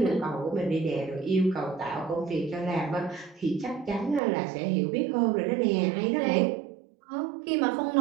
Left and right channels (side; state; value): left; drops out; at 4.2 s